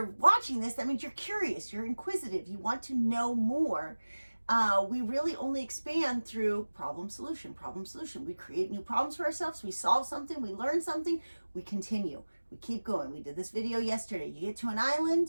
watching this, that means you're curious, you're inquisitive, you want to know more. We really only expand through problem solution. We create new problems for ourselves, we solve something, we learn something, we continue, we keep going. We did this video yesterday. You get to an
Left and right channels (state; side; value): inverted; both; correlation -1.00